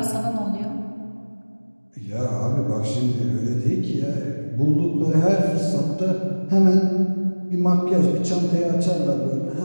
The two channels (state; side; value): inverted; both; correlation -1.00